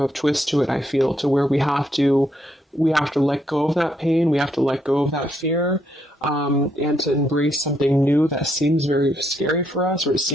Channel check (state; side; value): normal; both; correlation 0.75